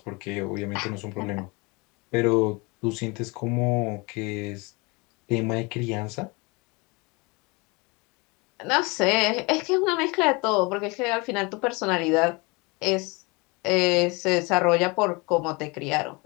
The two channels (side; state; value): right; quieter; 27.3 dB